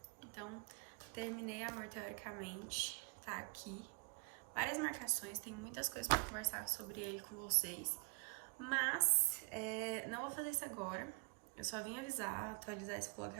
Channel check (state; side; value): quieter; left; 35.2 dB